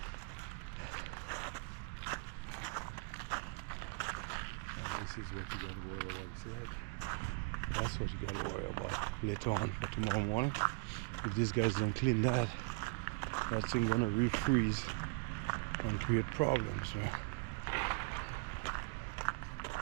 This is what you got to worry about. See that? That's what you got to worry about later on for tomorrow morning. If these guys don't clean that, that thing's gonna refreeze and create problems. Right?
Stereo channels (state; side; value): quieter; left; 30.1 dB